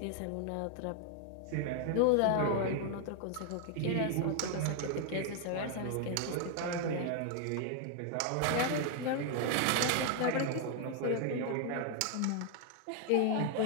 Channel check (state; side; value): different; both; correlation 0.00